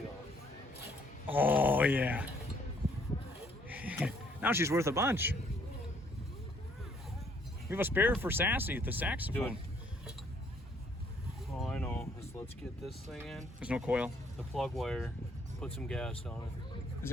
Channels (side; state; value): both; normal; correlation 0.65